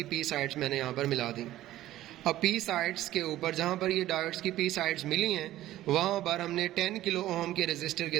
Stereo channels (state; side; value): quieter; left; 14.6 dB